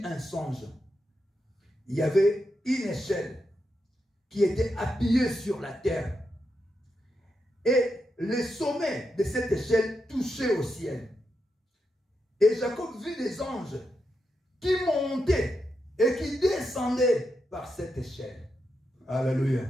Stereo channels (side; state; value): both; normal; correlation 0.85